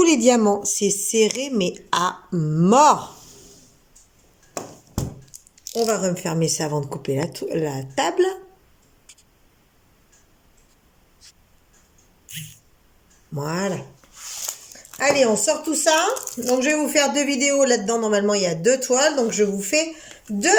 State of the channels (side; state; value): both; identical; correlation 1.00